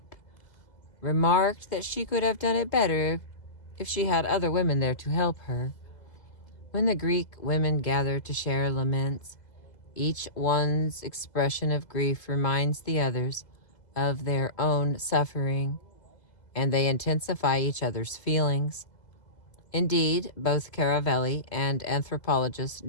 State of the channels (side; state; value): right; late; 2.0 ms